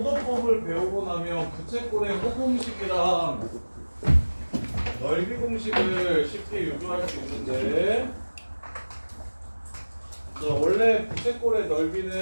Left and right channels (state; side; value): inverted; both; correlation -1.00